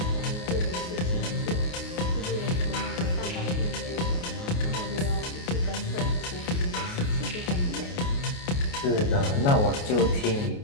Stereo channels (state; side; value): late; right; 28 ms